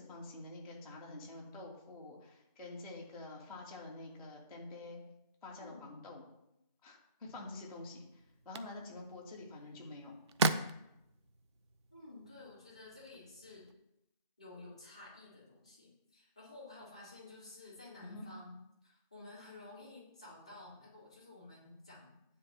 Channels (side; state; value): both; inverted; correlation -0.44